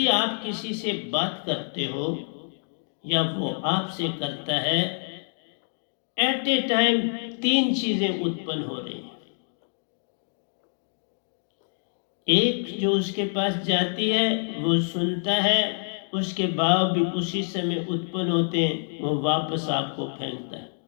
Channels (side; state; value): right; silent; 60 dB below the other